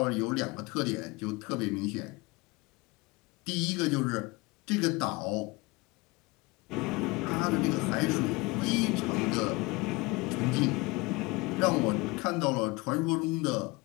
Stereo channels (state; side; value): quieter; right; 24.5 dB